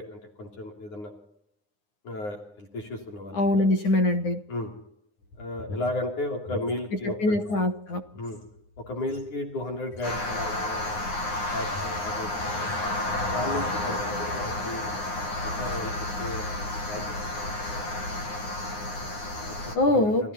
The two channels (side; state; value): right; late; 9.7 ms